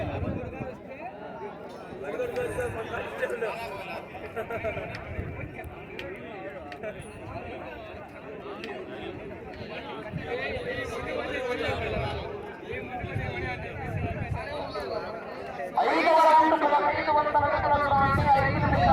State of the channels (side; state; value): both; identical; correlation 1.00